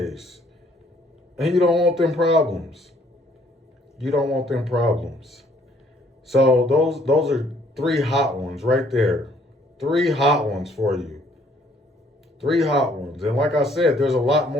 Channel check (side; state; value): both; normal; correlation 0.63